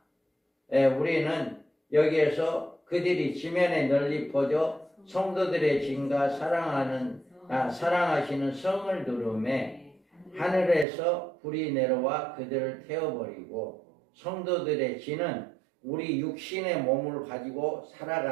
우리는 여기에서 그들이 지면에 널리 퍼져 성도들의 진과 사랑하시는 성을 두름에 하늘에서 불이 내려와 그들을 태워버리고 성도들의 진은 우리 육신의 몸을 가지고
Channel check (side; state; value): left; drops out; at 10.9 s